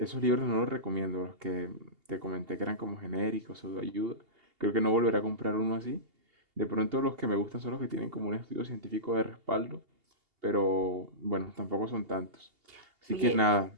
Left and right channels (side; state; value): left; late; 2.8 ms